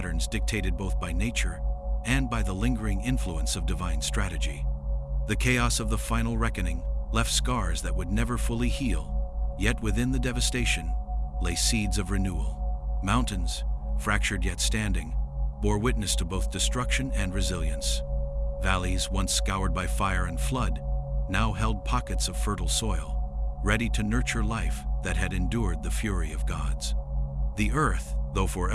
dictated both by nature and by the lingering influence of divine strategy. The chaos of the final reckoning left scars that would never fully heal, yet within the devastation lay seeds of renewal. Mountains, fractured yet standing, bore witness to both destruction and resilience. Valleys, once scoured by fire and flood, now held pockets of fertile soil, ready to nurture life that had endured the fury of gods. The Earth, though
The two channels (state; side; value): identical; both; correlation 1.00